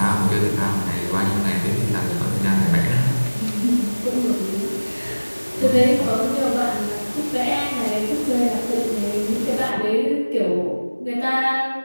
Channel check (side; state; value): both; inverted; correlation -1.00